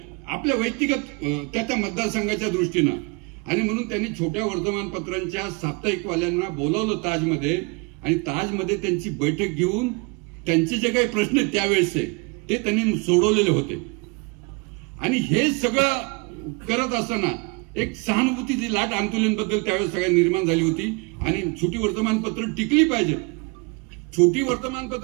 आपल्या व्यक्तिगत त्या मतदारसंघाच्या दृष्टीनं. आणि म्हणून त्यांनी छोट्या वर्तमानपत्रांच्या साप्ताहिकवाल्यांना बोलवलं ताजमध्ये आणि ताजमध्ये त्यांची बैठक घेऊन त्यांचे जे काही प्रश्न आहेत त्यावेळेसचे ते त्यांनी सोडवलेले होते. आणि हे सगळं करत असताना एक सहानुभूतीची लाट अंतुलेंबद्दल त्यावेळेस सगळ्या निर्माण झाली होती. आणि छोटी वर्तमानपत्र टिकली पाहिजेत, छोटी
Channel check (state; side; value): quieter; left; 29.8 dB